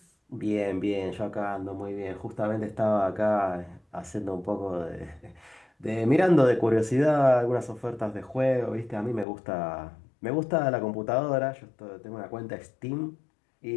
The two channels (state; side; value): drops out; right; at 9.2 s